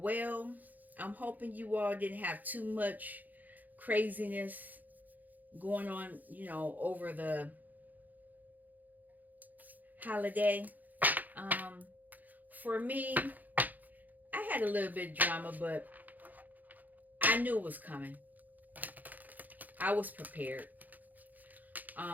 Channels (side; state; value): left; late; 0.082 ms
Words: I'm hoping you all didn't have too much craziness going on, over the holiday. For me, I had a little bit of drama, but I knew it was coming. I was prepared.